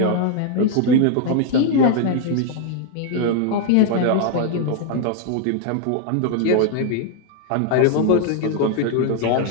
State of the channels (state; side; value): different; both; correlation 0.00